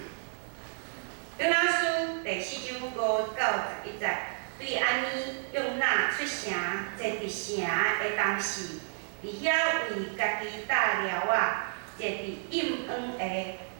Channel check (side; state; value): left; silent; digital silence